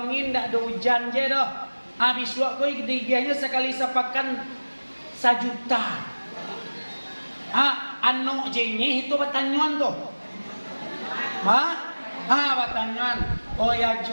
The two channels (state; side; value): inverted; both; correlation -1.00